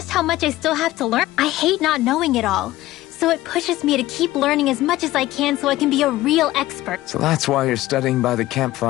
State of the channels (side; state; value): right; quieter; 16.4 dB